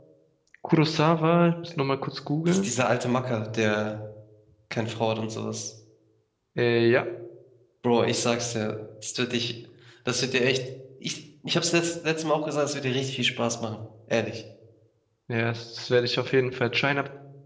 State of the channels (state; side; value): identical; both; correlation 1.00